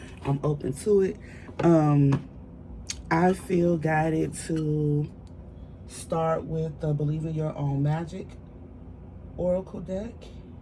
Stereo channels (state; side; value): identical; both; correlation 1.00